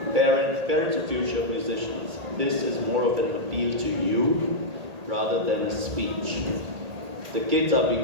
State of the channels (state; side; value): late; left; 1.8 ms